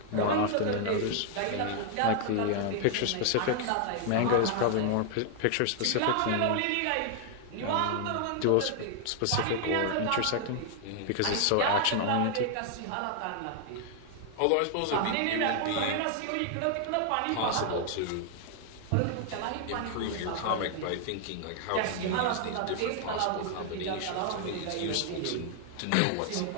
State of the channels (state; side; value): different; both; correlation 0.00